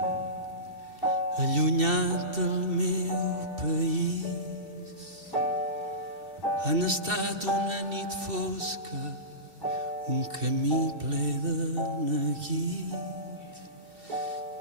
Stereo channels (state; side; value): late; left; 2.7 ms